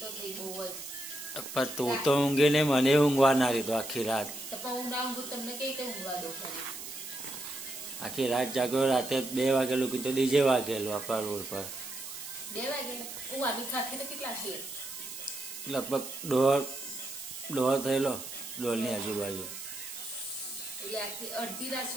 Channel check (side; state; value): right; noise; hiss, 9 dB below the sound